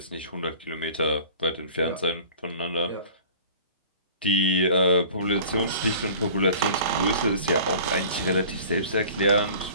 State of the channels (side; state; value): both; inverted; correlation -0.45